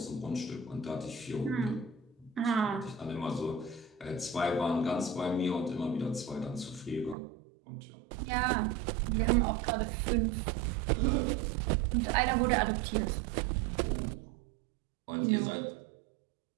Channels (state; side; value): drops out; left; at 7.2 s